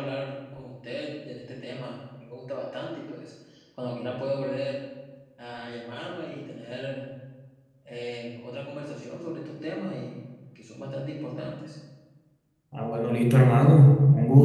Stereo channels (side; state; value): both; identical; correlation 1.00